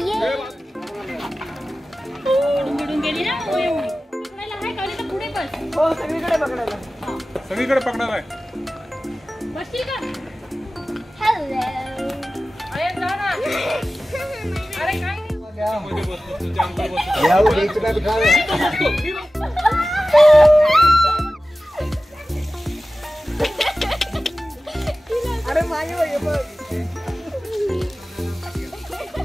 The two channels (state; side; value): normal; both; correlation 0.96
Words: सगळीकडे पकडणार आहे. अरे मागे बघ